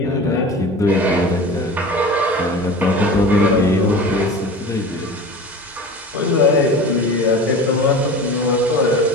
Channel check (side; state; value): both; normal; correlation 0.35